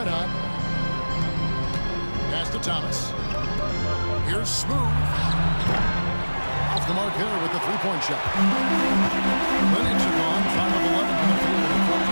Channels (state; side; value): inverted; both; correlation -1.00